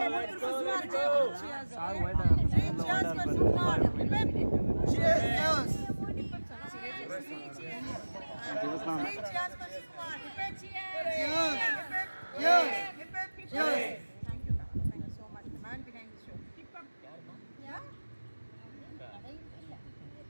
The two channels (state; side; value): inverted; both; correlation -1.00